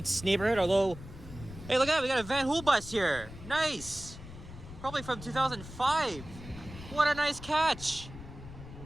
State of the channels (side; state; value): left; noise; rumble, 14 dB below the sound